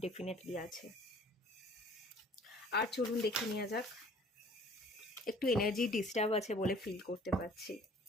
ডেফিনেটলি আছে। আর চলুন দেখে নেওয়া যাক। একটু এনার্জি ডিস্টার্ব আছে বলে ফিল করতে পারছি।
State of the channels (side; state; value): both; normal; correlation 0.53